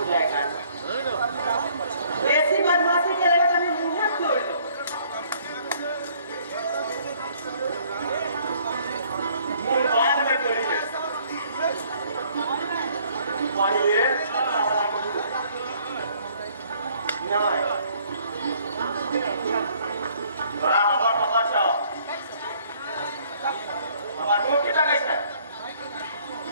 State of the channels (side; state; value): both; inverted; correlation -0.61